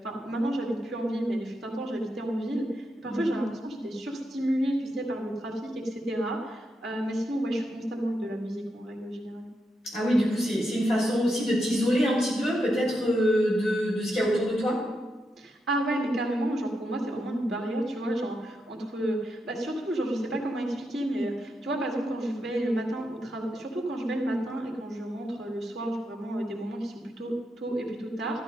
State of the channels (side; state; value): both; normal; correlation 0.84